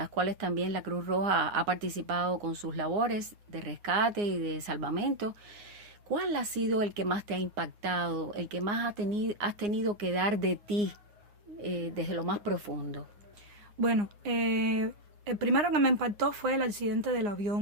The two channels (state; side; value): late; left; 9.7 ms